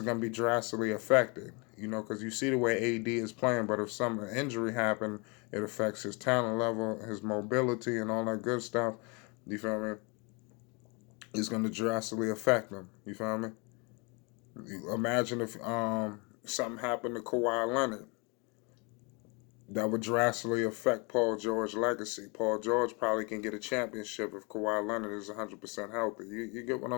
going to be drastically affected, because you see the way AD is playing, but if some injury happened, it affects his talent level, his mobility, and all that good stuff. You feel me? It's going to drastically affect him. You feel me? Imagine if something happened to Kawhi Leonard. That would drastically affect Paul George's legacy. Paul George probably can get a championship if Kawhi Leonard is 100% healthy. You get what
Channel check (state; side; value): quieter; right; 30.9 dB